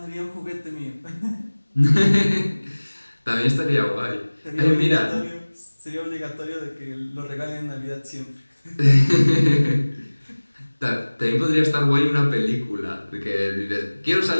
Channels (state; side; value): inverted; both; correlation -1.00